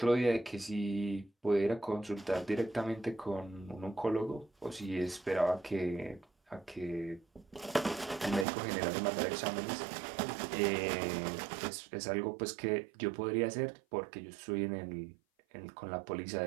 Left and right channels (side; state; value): left; drops out; at 8.5 s